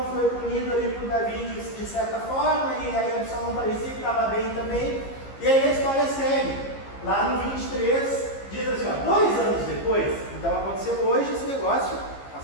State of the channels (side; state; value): right; late; 15 ms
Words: foi punido ali por Davi de certa forma, e aí Absalão parecia que estava bem também, e aí a história segue. Lá no 23, diz assim, 2 anos depois, então aconteceu hoje esse negócio,